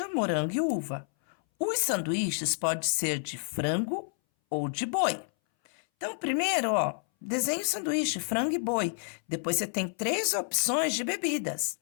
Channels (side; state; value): right; silent; 58 dB below the other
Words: morango e uva. Os sanduíches podem ser de frango ou de boi. Então, primeiro, ó, desenhe o sanduíche, frango e boi. Depois você tem 3 opções de bebidas.